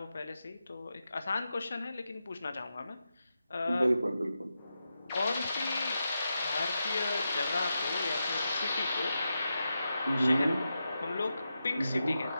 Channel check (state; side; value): inverted; both; correlation -0.89